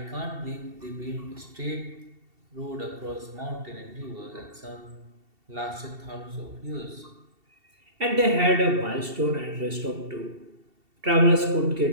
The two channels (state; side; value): late; left; 2.7 ms